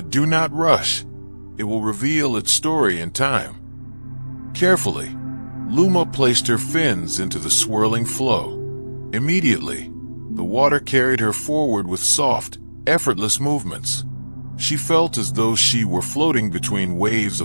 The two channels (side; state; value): both; inverted; correlation -1.00